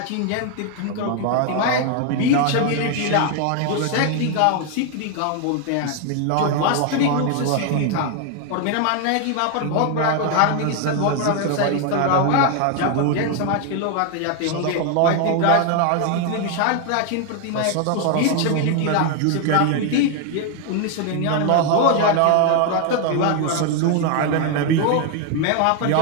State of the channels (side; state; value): both; different; correlation 0.01